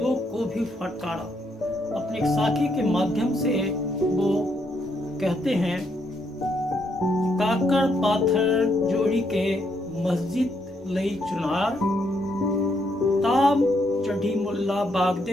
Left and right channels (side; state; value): both; normal; correlation 0.75